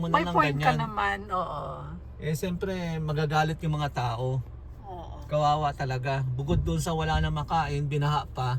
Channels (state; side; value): identical; both; correlation 1.00